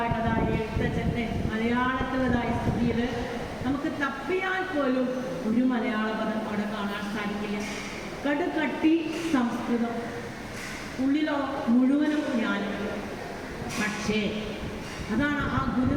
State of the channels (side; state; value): both; identical; correlation 1.00